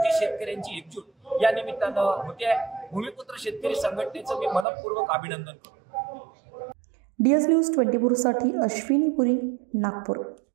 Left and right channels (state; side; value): drops out; left; at 4.7 s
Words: शेतकऱ्यांची एकजूट या निमित्तानं होते. भूमिपुत्र शेतकरी संघटनेचं मी मनपूर्वक अभिनंदन करतो. DS न्यूज 24 साठी अश्विनी पुरी, नागपूर.